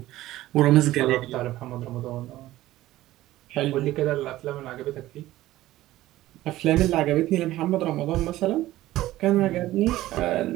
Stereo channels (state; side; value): quieter; left; 15.8 dB